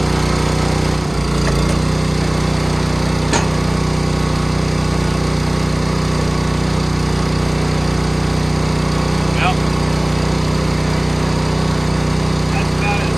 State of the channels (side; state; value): right; noise; rumble, 25 dB below the sound